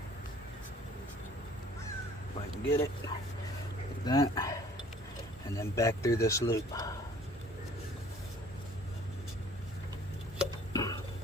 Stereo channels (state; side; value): normal; both; correlation 0.54